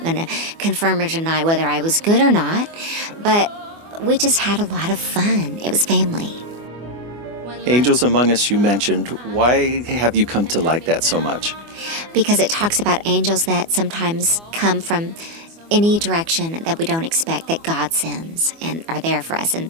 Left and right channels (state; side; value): late; left; 24 ms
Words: going to confirm or deny whether I was good or not, but we just had a lot of fun. It was family. Angels Among Us, you mentioned. Why have you come to like that so much? Because it talks about angels that sometimes come from any direction that we don't expect, that God sends and are there for us. And